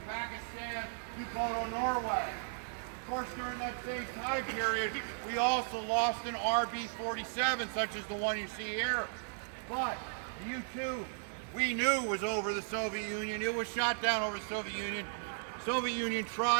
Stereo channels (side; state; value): left; silent; digital silence